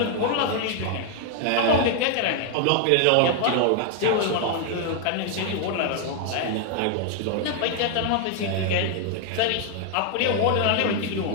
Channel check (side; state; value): both; different; correlation 0.00